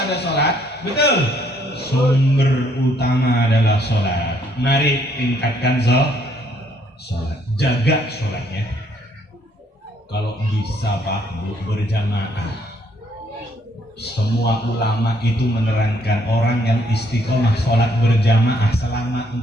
ada sholat. Betul? Sumber utama adalah sholat. Mari tingkatkan sholat. Jaga sholatnya. Kalau bisa Pak Bu berjamaah. Semua ulama itu menerangkan orang yang istiqomah sholat berjamaah selama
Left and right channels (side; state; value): both; normal; correlation 0.67